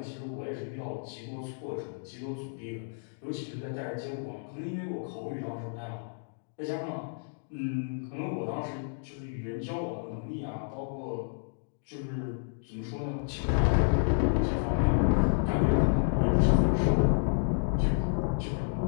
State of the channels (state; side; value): silent; right; digital silence